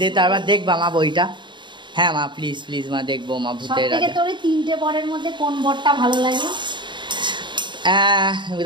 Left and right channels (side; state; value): left; late; 0.23 ms